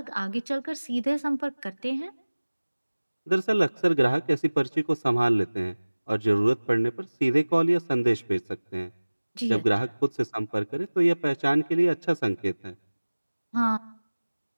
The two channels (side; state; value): both; inverted; correlation -1.00